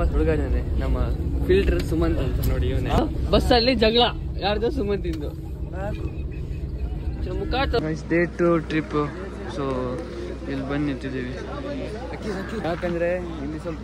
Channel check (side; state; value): both; identical; correlation 1.00